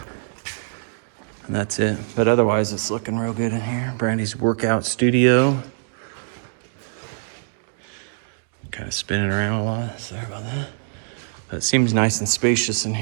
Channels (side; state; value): left; silent; digital silence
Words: And that's it. But otherwise, it's looking real good in here. Brandy's workout studio. Kind of spinning around a lot. Sorry about that. But it seems nice and spacious in